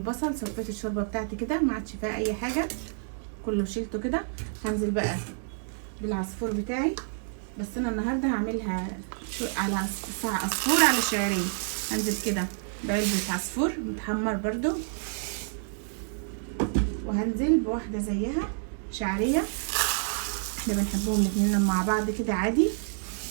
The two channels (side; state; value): left; silent; digital silence